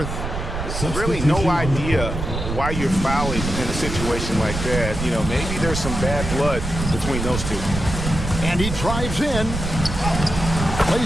Really no idea why you're fouling in a situation like that. You know, maybe there's some bad blood between those two. And he drives in.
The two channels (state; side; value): noise; right; rumble, 5 dB below the sound